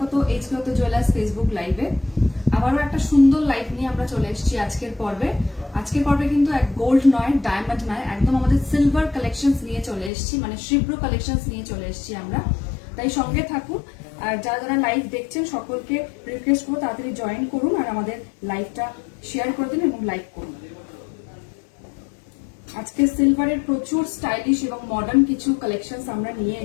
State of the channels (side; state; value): right; drops out; at 10.1 s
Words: এইচকে জুয়েলার্স ফেসবুক লাইভে। আবারও একটা সুন্দর লাইভ নিয়ে আমরা চলে এসেছি আজকের পর্বে। আজকের পর্বে কিন্তু এক গোল্ড নয়, ডায়মন্ড নয়, একদম আমাদের সিলভার কালেকশনস নিয়ে চলে এসেছি, মানে শ্রীব্র কালেকশনস নিয়ে চলে এসেছি আমরা। তাই সঙ্গে থাকুন। আর যারা যারা লাইভ দেখছেন সকলকে রিকোয়েস্ট করবো তাড়াতাড়ি জয়েন করুন আর আমাদের লাইভটা শেয়ার করে দিন এবং লাইক করুন। আজকে সিলভারের প্রচুর স্টাইলিশ এবং মডার্ন কিছু কালেকশনস আমরা নিয়ে